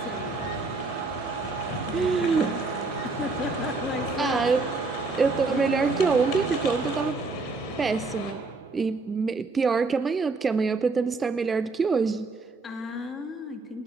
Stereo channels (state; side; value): quieter; left; 3.7 dB